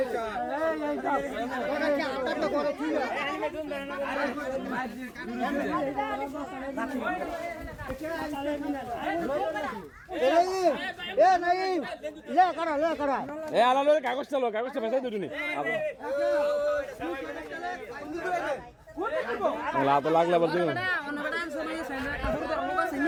কাগজটা লো কাগজটা ফেসাই দুটুনি তো লাগলে বলছি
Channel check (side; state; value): both; identical; correlation 1.00